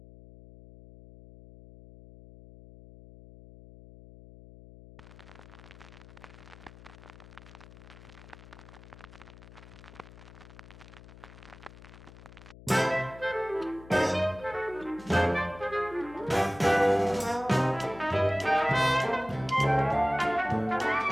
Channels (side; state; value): left; noise; hum, 19 dB below the sound